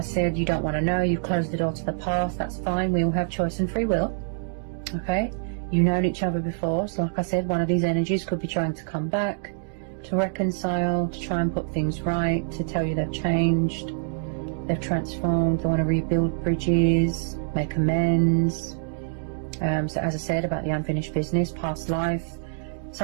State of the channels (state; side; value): silent; left; digital silence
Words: said, you don't want to know. You've closed the door to the past. That's fine. We all have choice and free will. Okay, you've known each other before. So like I said, one of these energies could be trying to come back, to reconcile, to try and put things right, to tell you they've changed, they've transformed, they want to rebuild bridges, make amends. So as I said about the unfinished business, past life,